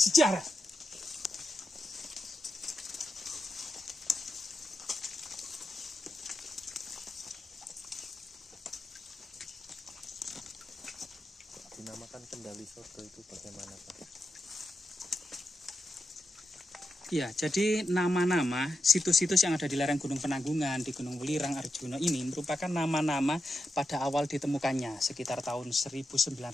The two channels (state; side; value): normal; both; correlation 0.88